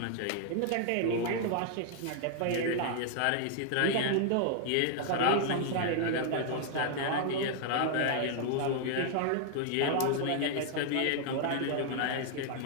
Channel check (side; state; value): both; different; correlation -0.01